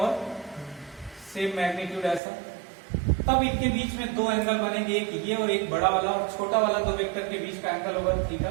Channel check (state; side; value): drops out; left; at 2.2 s